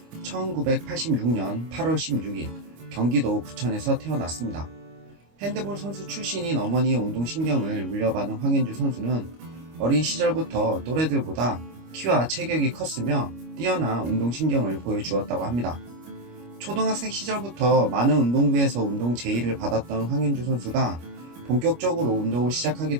1986년 8월 16일 경기도 부천에서 태어났습니다. 핸드볼 선수 출신인 어머니의 운동신경을 물려받은 황현주 선수는 어린 시절부터 또래들보다 키와 체격이 컸으며 뛰어난 운동신경을 보여주었다고 합니다. 초등학생 시절부터 많은 운동부에서 운동 제의를 받았던 황현주 선수가 본격적으로 운동을 시작하게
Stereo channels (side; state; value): left; late; 25 ms